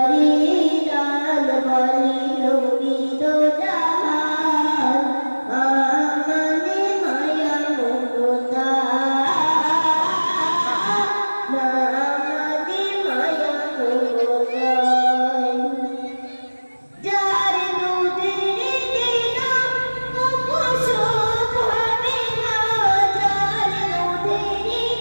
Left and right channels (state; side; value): inverted; both; correlation -1.00